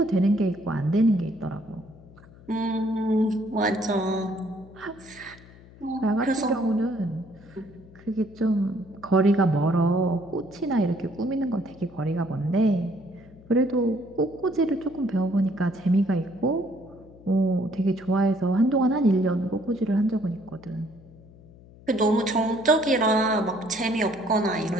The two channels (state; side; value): noise; left; hum, 22 dB below the sound